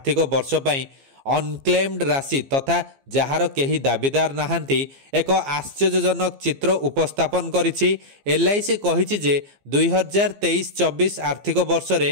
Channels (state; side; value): late; left; 15 ms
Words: वर्ष पई अनक्लेम्ड राशि तथा जार केही दाबीदार नाहंती एक आश्चर्यजनक चित्र उपस्थापन करिछि। LIC कहिछि जे 2023-24 आर्थिक वर्ष